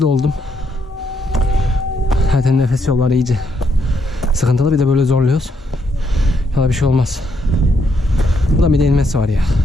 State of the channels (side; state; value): both; normal; correlation 0.76